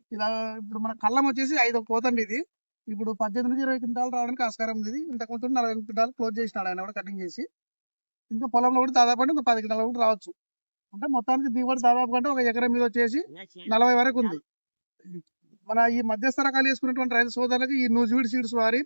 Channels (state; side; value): inverted; both; correlation -1.00